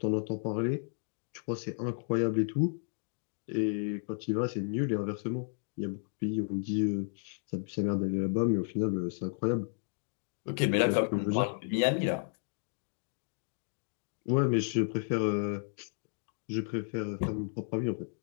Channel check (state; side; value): silent; right; digital silence